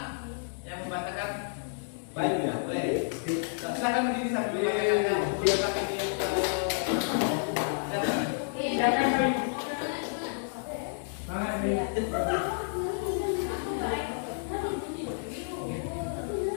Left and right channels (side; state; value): right; silent; digital silence